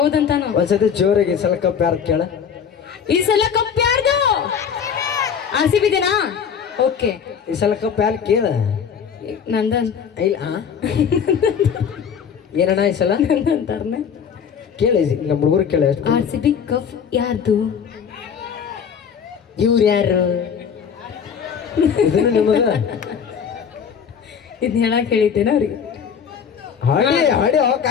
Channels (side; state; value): right; quieter; 7.3 dB